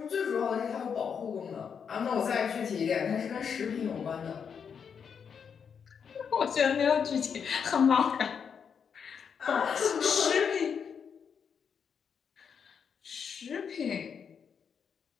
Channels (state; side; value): quieter; right; 6.9 dB